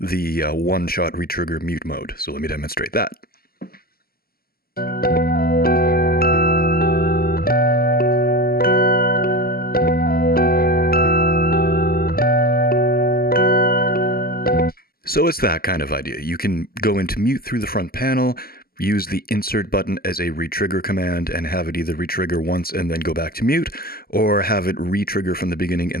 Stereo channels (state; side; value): late; right; 0.44 ms